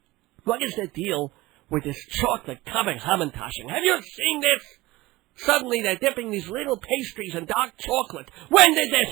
what is the deal with this chocolate-covered Hamantaschen? Have you seen this? Suddenly they're dipping these little pastries in dark chocolate. When did this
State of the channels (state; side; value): quieter; left; 19.5 dB